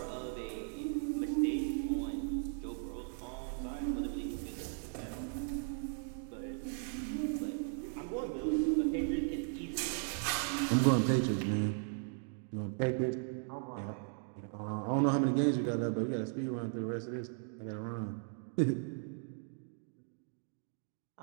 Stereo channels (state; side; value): silent; left; 53 dB below the other